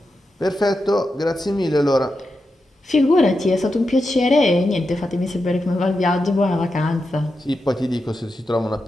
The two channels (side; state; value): both; normal; correlation 0.88